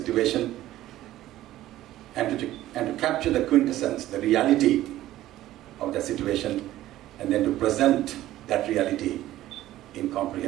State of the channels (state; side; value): quieter; left; 14.5 dB